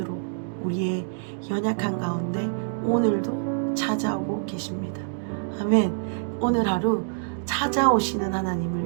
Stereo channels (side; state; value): left; silent; digital silence